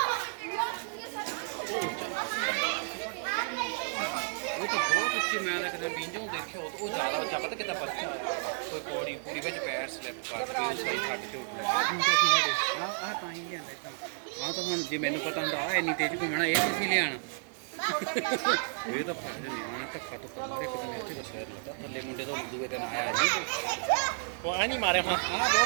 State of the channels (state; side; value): silent; left; 57 dB below the other